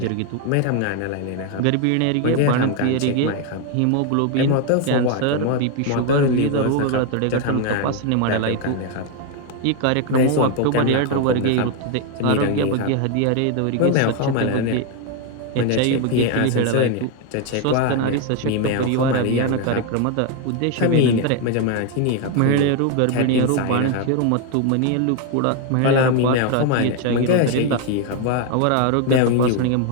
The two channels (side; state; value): both; different; correlation 0.01